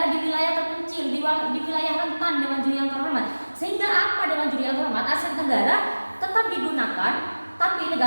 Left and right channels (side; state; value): both; inverted; correlation -1.00